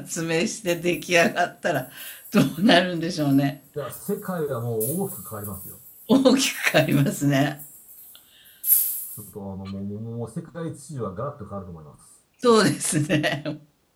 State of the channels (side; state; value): both; identical; correlation 1.00